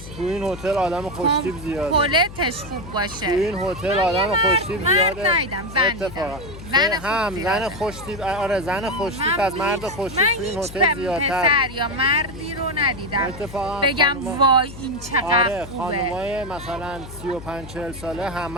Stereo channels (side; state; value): left; noise; hum, 14 dB below the sound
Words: تو این هتل آدم خوشتیپ زیاده. کمپلتش خوب باشه. تو این هتل آدم خوشتیپ زیاده. من ندیدم زن اتفاقا زن خوشتیپ آره زن خوشتیپ از مرد خوشتیپ تو این هتل زیادتر. پسر یا مردی رو ندیدم اتفاقا بگم وای این چقدر آره خوبه. خانمای مثلا 35-40 ساله